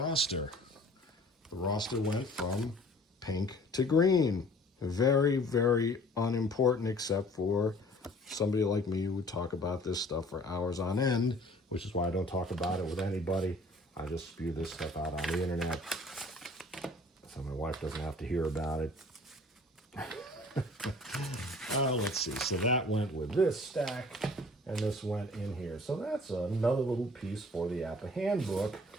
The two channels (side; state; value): both; normal; correlation 0.51